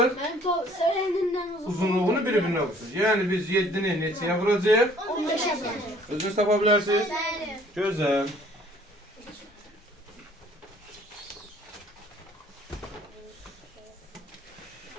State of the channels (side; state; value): both; normal; correlation 0.57